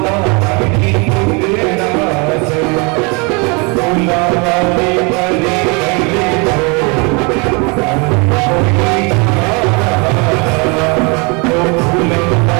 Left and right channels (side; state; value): left; quieter; 30.5 dB